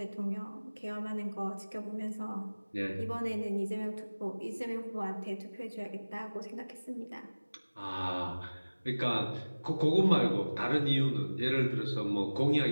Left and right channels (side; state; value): both; inverted; correlation -1.00